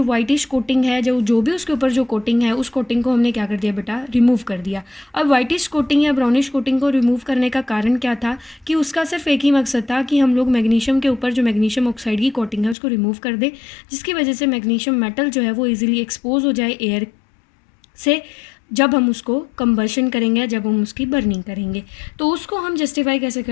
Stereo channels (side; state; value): right; drops out; at 12.8 s